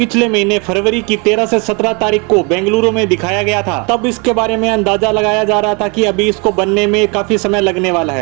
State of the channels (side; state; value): left; quieter; 31.3 dB